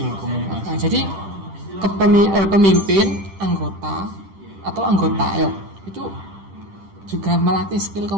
Nah, jadi pemimpin, anggota itu juga melatih skill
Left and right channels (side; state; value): left; late; 10 ms